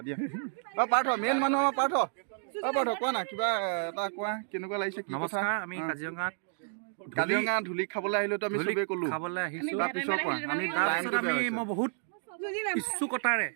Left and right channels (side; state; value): left; silent; digital silence